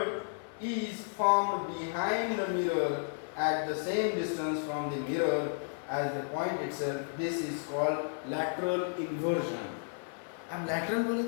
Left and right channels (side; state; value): right; silent; digital silence